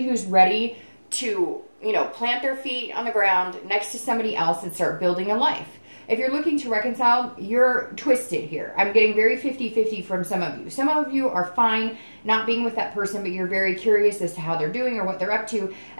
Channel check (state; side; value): inverted; both; correlation -1.00